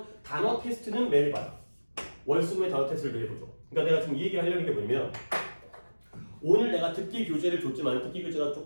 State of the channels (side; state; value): both; inverted; correlation -1.00